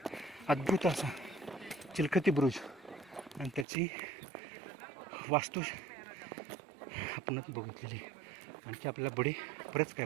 अद्भुत असा चिलखती बुरुज आणि त्याची वास्तू आपणच बघितलेली. आणखी आपल्याला बरेच काय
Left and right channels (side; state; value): left; drops out; at 3.7 s